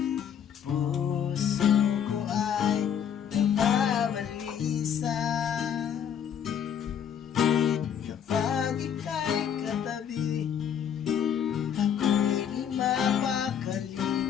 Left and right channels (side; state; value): right; quieter; 8.5 dB